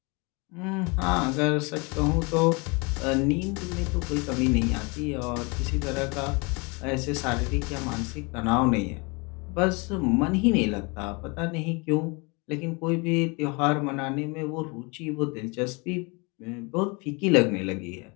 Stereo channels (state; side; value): quieter; right; 29.3 dB